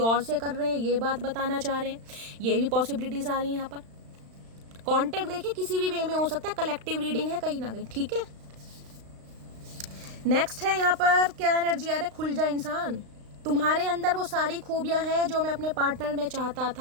से कर रहे हैं, ये बात बताना चाह रहे हैं। ये भी पॉसिबिलिटीज आ रही हैं यहाँ पर। कॉन्टेक्ट देखिए किसी भी वे में हो सकता है, कलेक्टिव रीडिंग है कहीं ना कहीं, ठीक है। नेक्स्ट है यहाँ पर क्या एनर्जी आ रहा है, खुल जा इंसान, तुम्हारे अंदर वो सारी खूबियां हैं जो मैं अपने पार्टनर में चाहता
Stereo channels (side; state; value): left; late; 35 ms